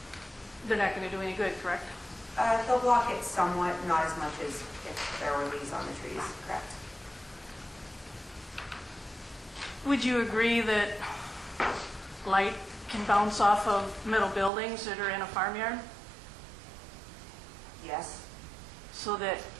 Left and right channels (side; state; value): left; drops out; at 14.5 s